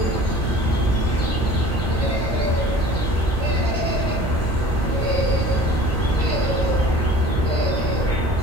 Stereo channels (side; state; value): both; normal; correlation 0.44